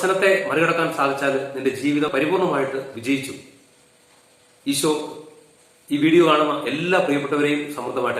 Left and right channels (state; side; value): identical; both; correlation 1.00